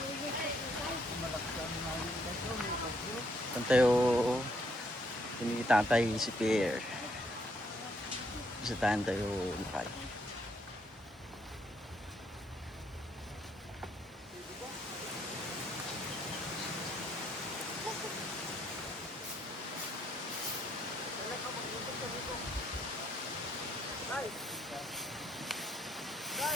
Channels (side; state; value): both; normal; correlation 0.71